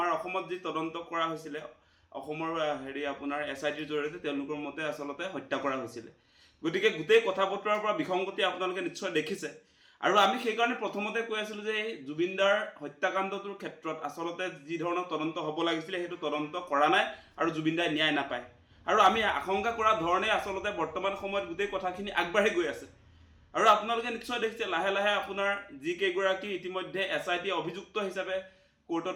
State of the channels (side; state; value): both; identical; correlation 1.00